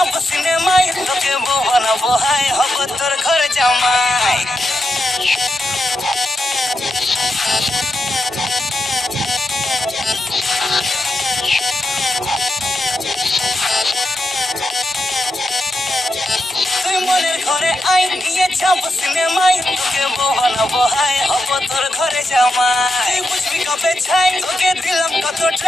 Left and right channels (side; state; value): both; normal; correlation 0.86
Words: সিনেমায়, তোকে বউ বানাবো হাই, হব তোর ঘরে জামাই। তুই মনের ঘরে আই নিয়ে যাব সিনেমায়, তোকে বউ বানাবো হাই, হব তোর ঘরে জামাই। তুই বুঝবি কবে ছাই, তোকে দিলাম কত